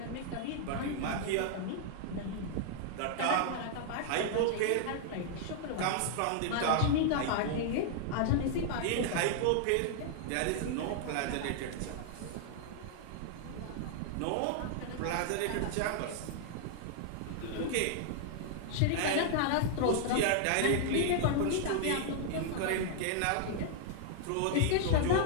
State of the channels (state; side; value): different; both; correlation -0.01